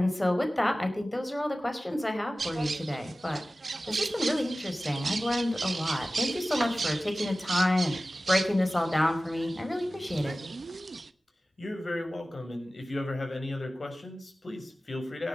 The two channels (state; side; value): normal; both; correlation 0.96